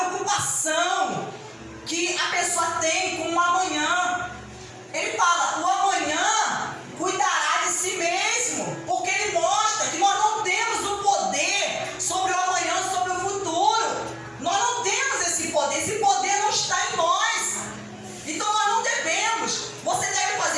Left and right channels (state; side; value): identical; both; correlation 1.00